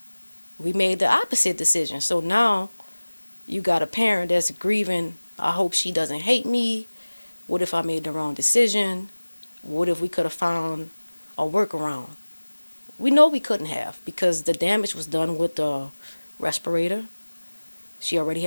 We made the opposite decision. So now you got a parent that's grieving, I hope she doesn't hate me. What if I made the wrong decision? What if we could have found a workaround? We know we couldn't have because the damage was done with the respirator. She already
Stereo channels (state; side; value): inverted; both; correlation -1.00